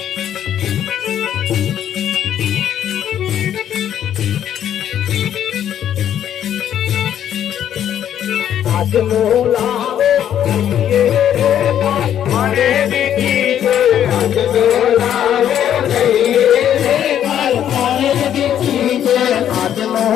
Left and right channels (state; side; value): quieter; right; 10.2 dB